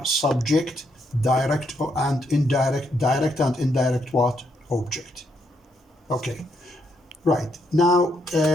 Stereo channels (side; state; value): both; normal; correlation 0.76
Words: subject, direct and indirect what? Object. Okay, right. Now,